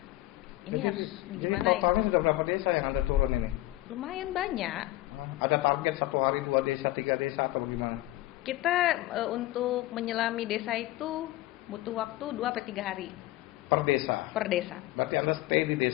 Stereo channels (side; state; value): right; quieter; 17.3 dB